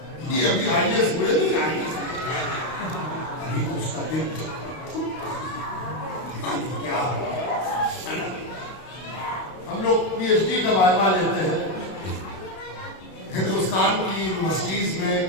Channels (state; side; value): late; right; 32 ms